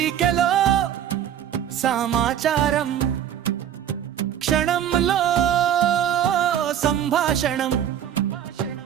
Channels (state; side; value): quieter; left; 10.0 dB